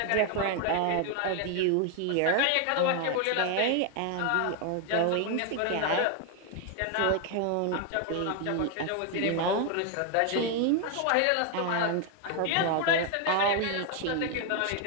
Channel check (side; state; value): both; different; correlation 0.01